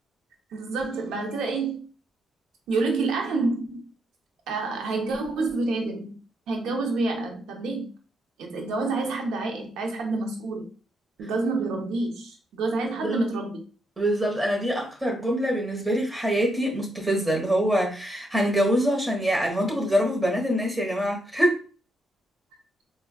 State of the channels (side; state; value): both; normal; correlation 0.78